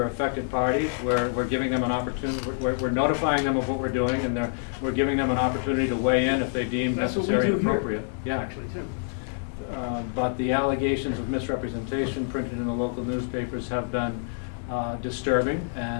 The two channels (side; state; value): right; silent; 60 dB below the other